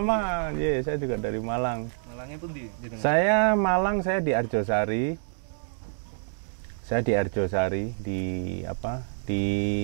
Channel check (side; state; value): left; silent; 60 dB below the other